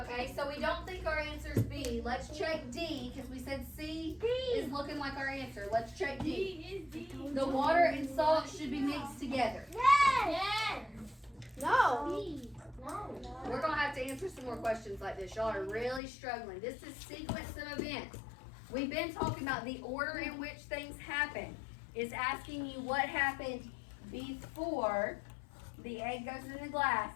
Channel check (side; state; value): right; drops out; at 16.0 s